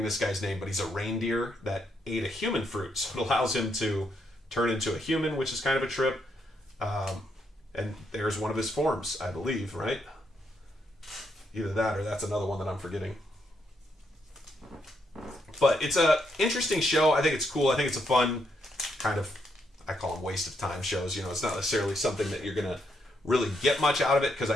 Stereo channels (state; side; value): normal; both; correlation 0.77